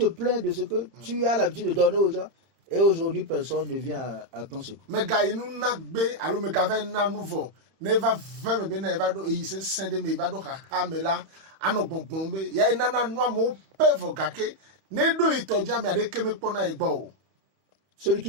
plains de ce que tu as l'habitude de donner aux gens et aujourd'hui personne ne vient à ton secours. me ga inu na gbe alo me ga ve na nu vo never ve me be na eva do e se sende me eva do ha me la ano gbongbon be ya ina na nu amo pe vo gake ne do itoja me ade keme pona egbo Celui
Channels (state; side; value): late; left; 31 ms